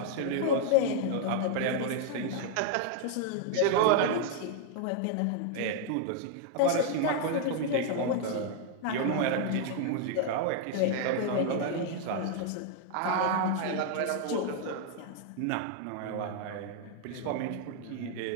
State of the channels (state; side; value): different; both; correlation 0.00